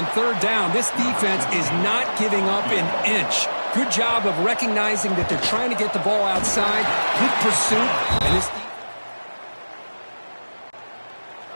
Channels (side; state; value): both; inverted; correlation -1.00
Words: third down? This defense is not giving up an inch. Good job of recognizing that they're trying to get the ball outside. Good pursuit. And this